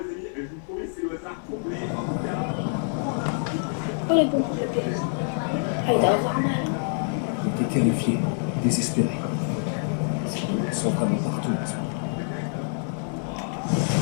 Oh les bons problèmes. Ah, il doit avoir mal. J'étais terrifié, désespéré. Ils sont vraiment partout en ce moment.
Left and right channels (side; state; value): right; silent; 61 dB below the other